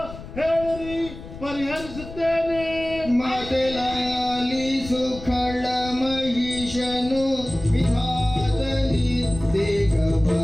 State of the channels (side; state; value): left; noise; rumble, 13 dB below the sound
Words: ಹೇಳಿರಿ, ಪರಿಹರಿಸುತ್ತೇನೆ. ಮಾತಲಾಲಿಸು ಖಳ ಮಹಿಷನು ವಿಧಾತಲಿ ದೇಗ